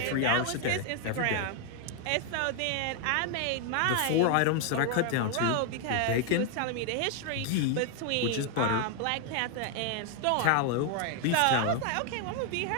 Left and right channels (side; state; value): both; different; correlation 0.00